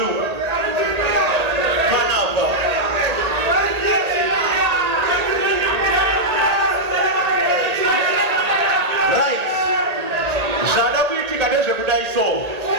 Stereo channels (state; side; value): late; left; 1.8 ms